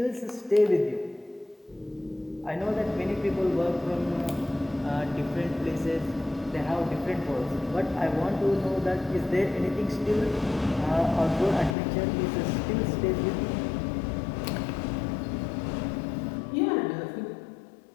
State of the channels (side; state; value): right; drops out; at 11.8 s